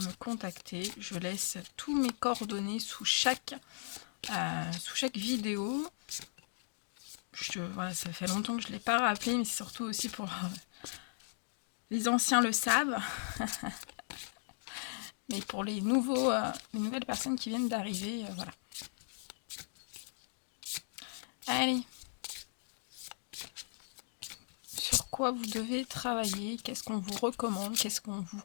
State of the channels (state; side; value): silent; right; digital silence